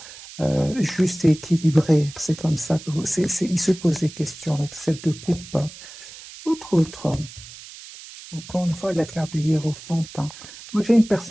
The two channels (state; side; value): noise; right; hiss, 16 dB below the sound